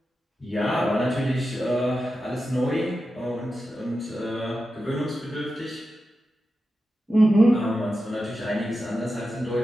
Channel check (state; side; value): normal; both; correlation 0.91